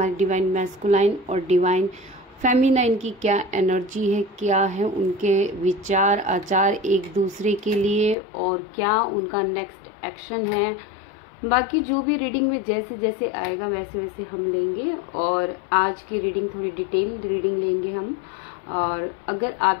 डिवाइन मैस्कुलाइन और डिवाइन फेमिनाइन की क्या एनर्जी है, क्या है उनके विचार आचार एक दूसरे के लिए और क्या उनका नेक्स्ट एक्शन है। बाकी जो भी रीडिंग में जैसे जैसे आएगा वैसे वैसे हम लेंगे और आज की रीडिंग थोड़ी डिटेल रीडिंग लेंगे हम। और अगर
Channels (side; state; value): right; drops out; at 8.2 s